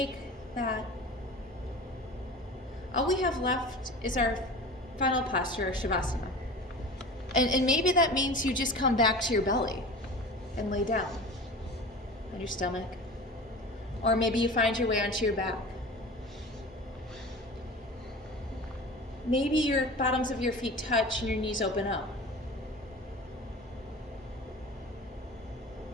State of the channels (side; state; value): both; normal; correlation 0.35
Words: that. All we have left is our final posture, Shavasana. And maybe that means you just come back to your belly and lay down on your stomach. Or maybe you find your way onto your back. Maybe your bottoms of your feet touch and your knees open up.